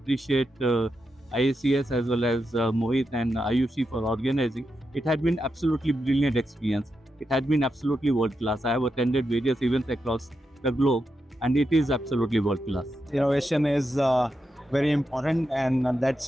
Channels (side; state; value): both; normal; correlation 0.87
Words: IICS as well as Mohit and Ayushi for organizing. It had been absolutely brilliant experience. It had been absolutely world class. I have attended various events across the globe and it is absolutely world class. Innovation is very important and that's